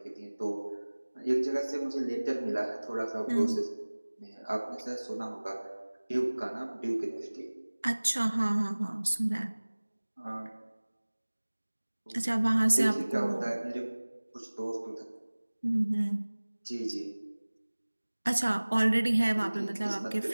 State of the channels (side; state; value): both; inverted; correlation -1.00